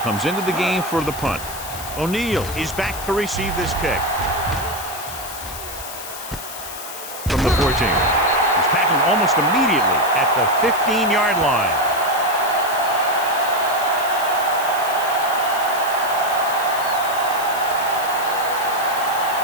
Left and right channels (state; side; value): noise; left; hiss, 11 dB below the sound